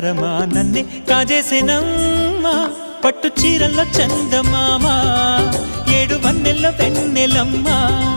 నన్నే కాజేసేనమ్మా పట్టు చీరల్లో చందమామా ఏడు వన్నెల్లో వెన్నెలమ్మా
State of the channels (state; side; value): inverted; both; correlation -1.00